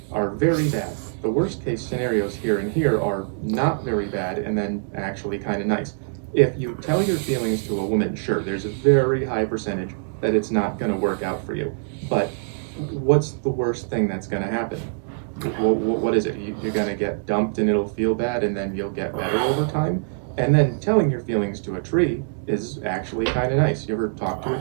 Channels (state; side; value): silent; left; digital silence